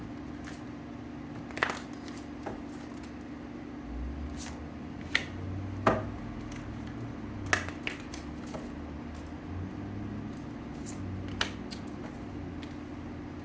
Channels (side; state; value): both; identical; correlation 1.00